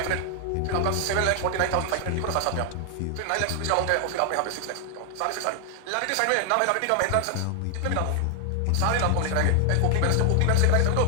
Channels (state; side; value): different; both; correlation 0.00